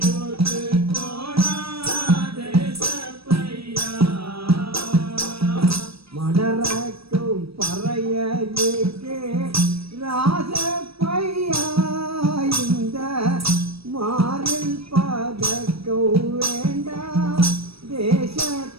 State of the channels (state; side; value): late; left; 0.77 ms